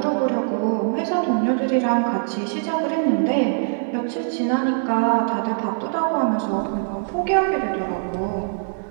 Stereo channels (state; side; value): silent; left; 64 dB below the other